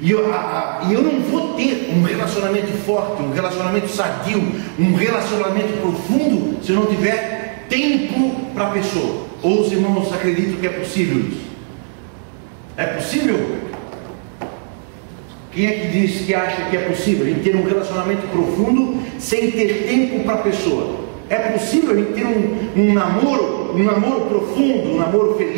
eu não vou ter um relacionamento forte, um relacionamento sadio, um relacionamento profundo, se eu não tiver tempo para a pessoa. Ou os irmãos acreditam que é possível isso? É possível? Quem é que diz que acha que é possível a gente ter um relacionamento profundo sem ter tempo para a pessoa? É possível a gente ter um namoro profundo, um namoro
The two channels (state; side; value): silent; left; digital silence